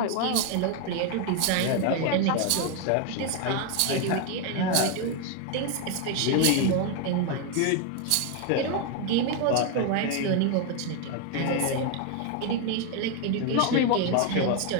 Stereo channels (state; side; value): different; both; correlation 0.01